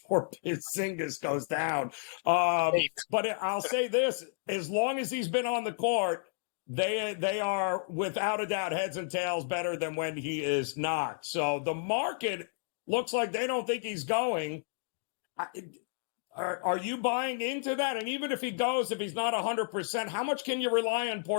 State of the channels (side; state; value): right; silent; digital silence